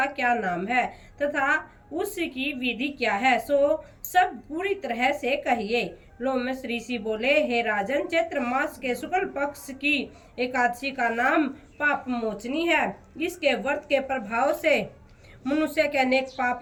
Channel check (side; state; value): both; identical; correlation 1.00